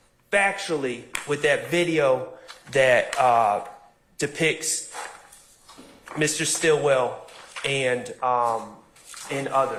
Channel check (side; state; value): both; identical; correlation 1.00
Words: factually with that video that depicts Mr. Stillwell and